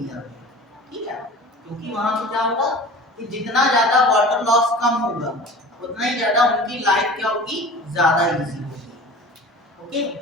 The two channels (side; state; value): both; normal; correlation 0.39